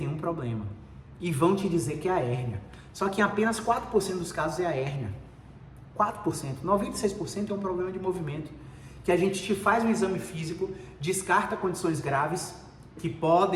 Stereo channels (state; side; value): identical; both; correlation 1.00